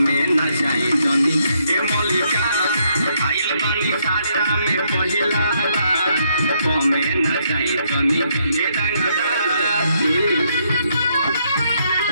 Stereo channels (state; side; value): inverted; both; correlation -0.74